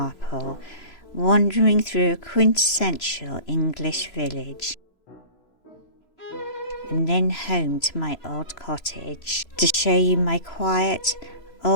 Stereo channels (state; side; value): late; right; 3.0 ms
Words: wandering through a quintessential English village, and then home to my old cottage to show you my quiet,